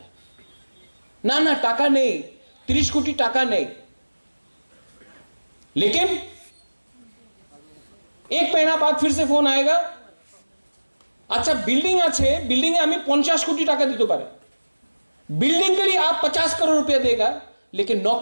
ना टाका नहीं, 30 कोटी टाका नहीं। लेकिन एक महीना बाद फिर से फोन आएगा, अच्छा बिल्डिंग आछे, बिल्डिंग हमें 50 कोटी टाका दीते पारे, बिल्डिंग के लिए आप 50 करोड़ रुपया देगा, लेकिन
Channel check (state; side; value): inverted; both; correlation -1.00